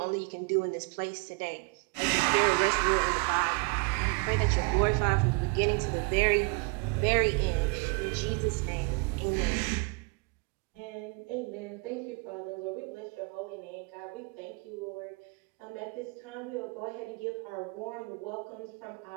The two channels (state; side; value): quieter; left; 30.5 dB